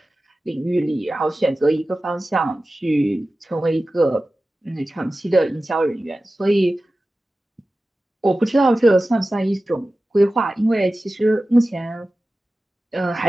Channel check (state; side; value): normal; both; correlation 0.95